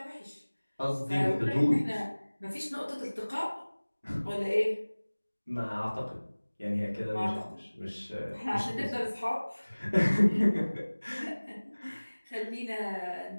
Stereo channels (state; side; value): inverted; both; correlation -1.00